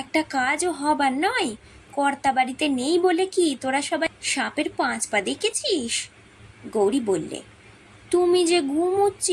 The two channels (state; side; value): identical; both; correlation 1.00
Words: একটা কাজও হবার নয়? কর্তা বাড়িতে নেই বলে কি তোরা সবাই সাপের 5 পা দেখেছিস? গৌরী বললে, তুমি যে